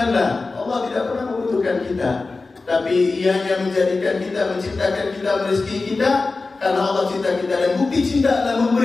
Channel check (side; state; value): right; quieter; 3.7 dB